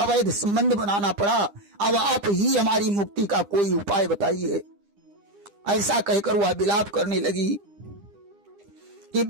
संबंध बनाना पड़ा। अब आप ही हमारी मुक्ति का कोई उपाय बताइए। ऐसा कहकर वह विलाप करने लगी। कि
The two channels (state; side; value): late; left; 9.9 ms